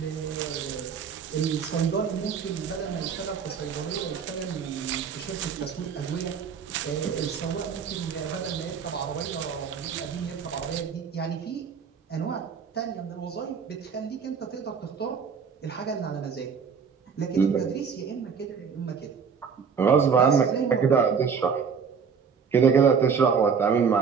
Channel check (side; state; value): left; quieter; 6.3 dB